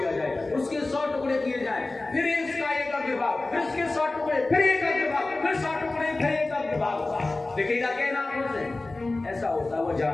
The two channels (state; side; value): quieter; right; 3.1 dB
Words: जाए, उसके 100 टुकड़े किए जाए, फिर इसका एक अग्रभाग, फिर इसके 100 टुकड़े, फिर एक अग्रभाग, फिर 100 टुकड़े, फिर एक अग्रभाग, दिखेगा क्या नाम से? ऐसा होता है, वो